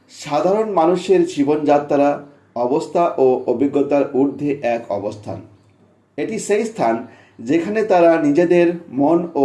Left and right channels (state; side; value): identical; both; correlation 1.00